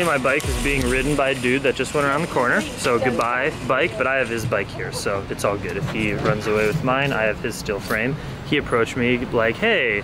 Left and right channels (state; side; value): identical; both; correlation 1.00